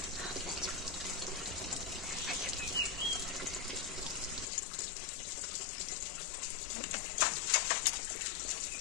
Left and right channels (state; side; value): drops out; right; at 4.5 s